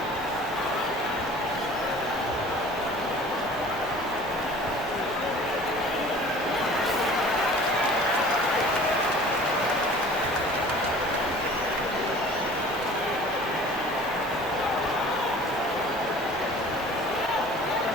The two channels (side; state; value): both; normal; correlation 0.46